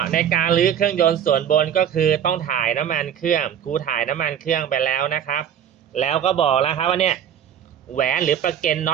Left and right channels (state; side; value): quieter; left; 9.2 dB